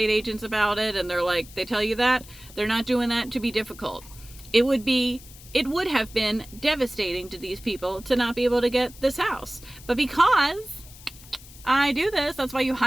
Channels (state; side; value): noise; left; hiss, 20 dB below the sound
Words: agents about it and they're like, they tell you that, they're not doing that to be difficult. It would have been devastating to these people to not be able to get this house. But because I do this, that's why you